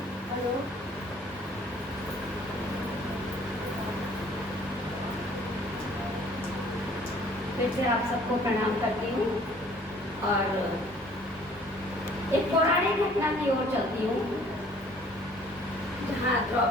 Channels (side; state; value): both; normal; correlation 0.55